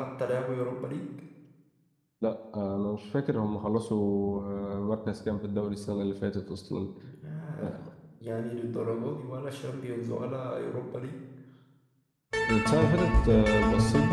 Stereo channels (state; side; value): identical; both; correlation 1.00